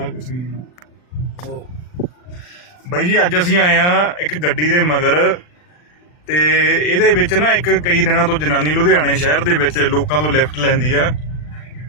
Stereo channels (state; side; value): late; right; 40 ms